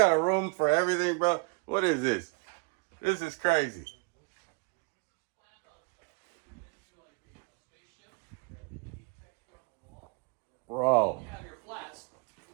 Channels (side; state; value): left; quieter; 31.4 dB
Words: a room for everything, bro. What is this? This is crazy. Bro. You have your flats.